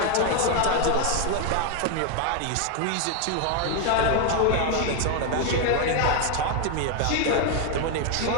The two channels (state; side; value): different; both; correlation 0.01